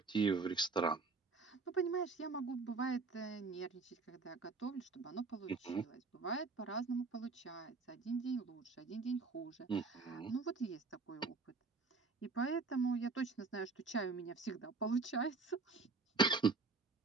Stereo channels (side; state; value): left; quieter; 4.1 dB